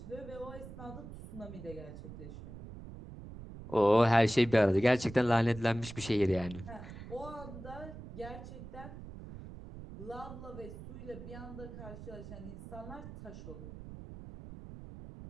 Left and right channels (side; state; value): right; noise; rumble, 12 dB below the sound